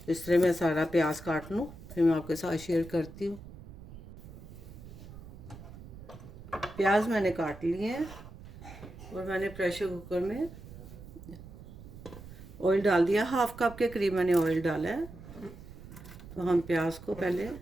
इस तरह मैं सारा प्याज काट लूँ, फिर मैं आपके साथ शेयर करती हूँ। प्याज मैंने काट लिए हैं और मैंने प्रेशर कुकर में ऑयल डाल दिया। 1/2 कप के करीब मैंने ऑयल डाला है। तो हम प्याज को पहले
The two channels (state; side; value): noise; right; rumble, 15 dB below the sound